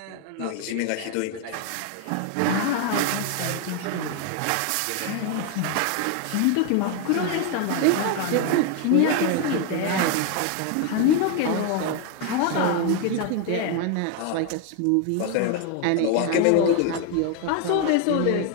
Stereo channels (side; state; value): both; different; correlation 0.01